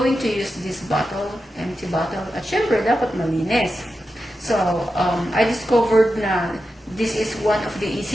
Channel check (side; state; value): both; normal; correlation 0.90